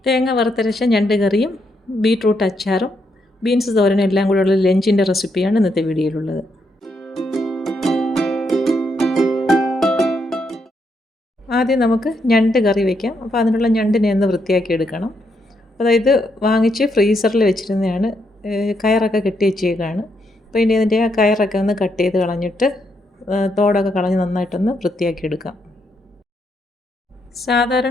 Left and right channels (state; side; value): normal; both; correlation 0.78